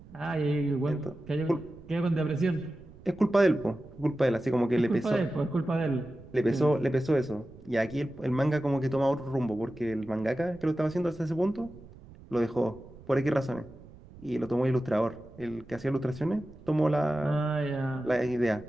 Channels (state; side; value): noise; right; rumble, 20 dB below the sound